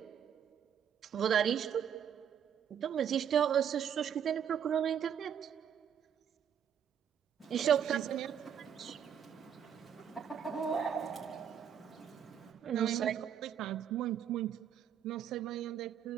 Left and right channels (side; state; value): left; quieter; 8.6 dB